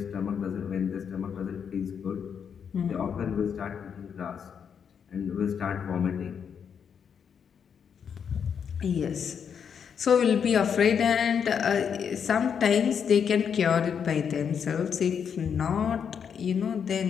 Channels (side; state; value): right; quieter; 7.3 dB